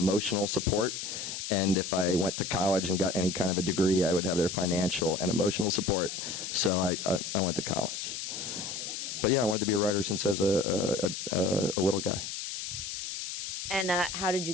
support. And if I went to college and got any kind of a degree, I would have their financial and emotional support. So I went to college. But yeah, I wanted to be a writer since I was a little guy. And how did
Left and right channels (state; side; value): noise; left; hiss, 6 dB below the sound